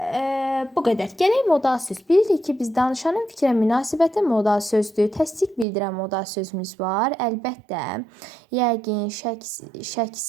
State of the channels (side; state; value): left; drops out; at 5.7 s